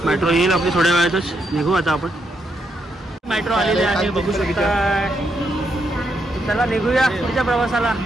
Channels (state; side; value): normal; both; correlation 0.79